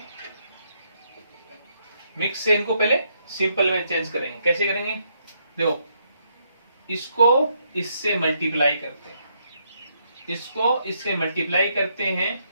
मिक्स से इनको पहले सिंपल में चेंज करेंगे। कैसे करेंगे? देखो इसको इससे मल्टीप्लाई करते हैं, इसको इससे मल्टीप्लाई करते हैं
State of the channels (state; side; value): inverted; both; correlation -0.75